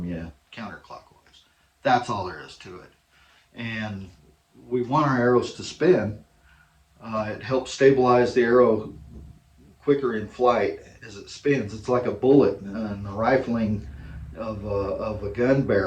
you counterclockwise. That's all there is to it. And we want our arrows to spin. It helps stabilize the arrow quicker in flight as it spins. It's like a bullet in the rifling of a gun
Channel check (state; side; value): identical; both; correlation 1.00